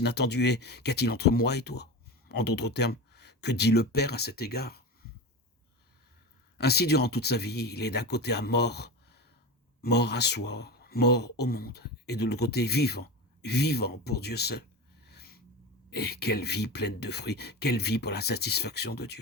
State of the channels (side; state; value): both; normal; correlation 0.25